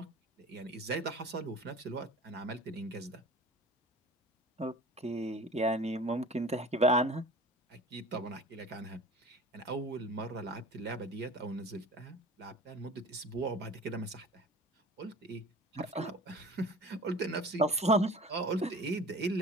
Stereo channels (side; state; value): both; normal; correlation 0.41